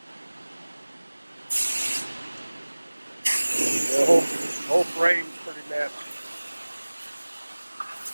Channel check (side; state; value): both; inverted; correlation -1.00